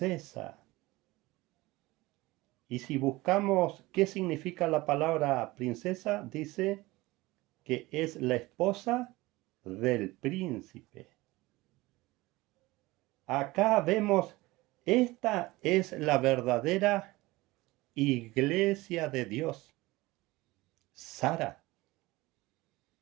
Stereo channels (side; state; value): left; quieter; 20.4 dB